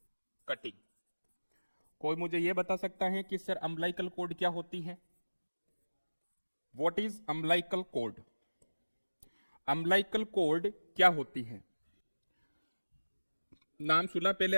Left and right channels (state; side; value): inverted; both; correlation -1.00